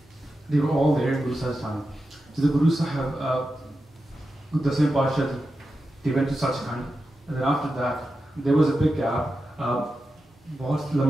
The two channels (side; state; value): both; normal; correlation 0.90